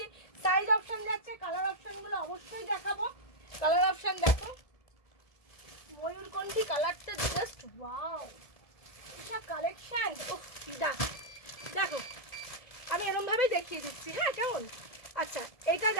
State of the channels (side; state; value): right; late; 1.7 ms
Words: সাইজ অপশন যাচ্ছে। কালার অপশনগুলো অবশ্যই দেখাবো, কালার অপশন দেখো, ময়ূরকণ্ঠী কালারটা জাস্ট ওয়াও, এটা কালেকশন দেখো আমি এরকম ভাবেই দেখিয়ে দিচ্ছি, হ্যাঁ কেমন। আচ্ছা এটা